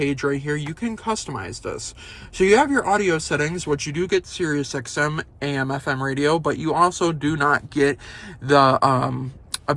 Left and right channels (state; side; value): identical; both; correlation 1.00